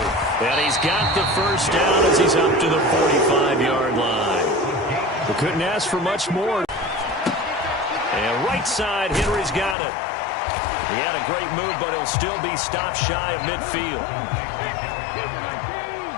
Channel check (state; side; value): drops out; right; at 9.8 s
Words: And he's got the first down as he's up to the 45-yard line. We couldn't ask for much more. And right side, Henry's got it. He had a great move, but he'll still be stopped shy of midfield.